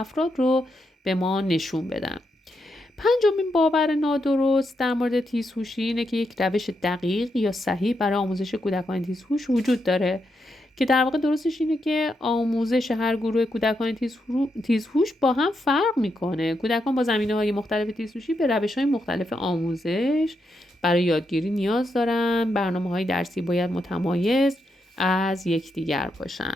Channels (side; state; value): both; normal; correlation 0.82